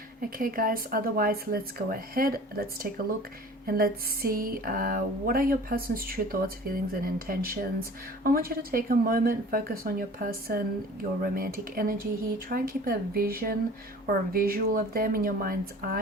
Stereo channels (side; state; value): both; normal; correlation 0.44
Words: Okay guys, otherwise let's go ahead, let's take a look and let's see what are your person's true thoughts, feelings and intentions. I want you to take a moment, focus on your person, your romantic energy here. Try and keep a vision or a visual of them in your mind's